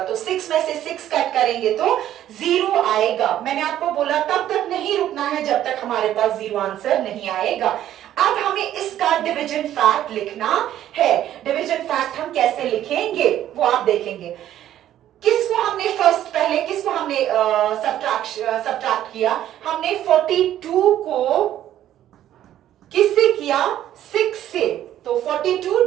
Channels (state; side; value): quieter; left; 12.0 dB